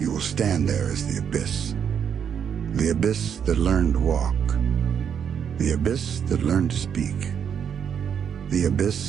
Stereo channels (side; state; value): left; quieter; 7.9 dB